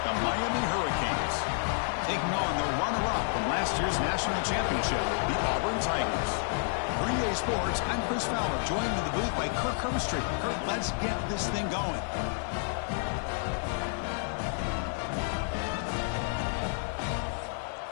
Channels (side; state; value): right; silent; 58 dB below the other